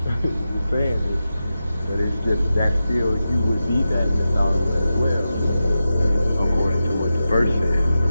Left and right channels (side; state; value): both; inverted; correlation -0.91